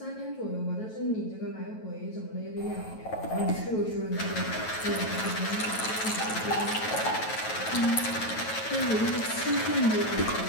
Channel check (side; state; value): right; late; 9.2 ms